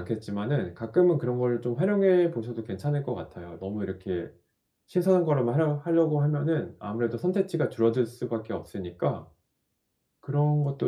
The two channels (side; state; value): both; identical; correlation 1.00